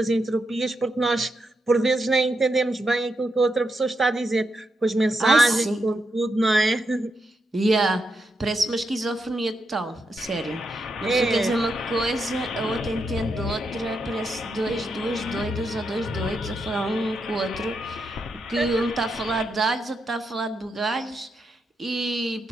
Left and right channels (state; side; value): normal; both; correlation 0.83